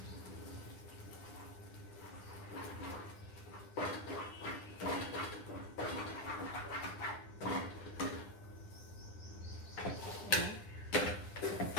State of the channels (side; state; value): right; late; 9.9 ms